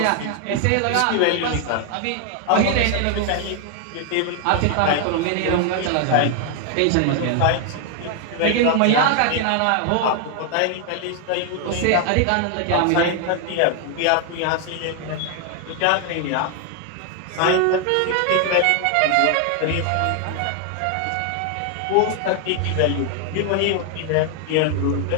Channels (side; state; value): both; different; correlation 0.00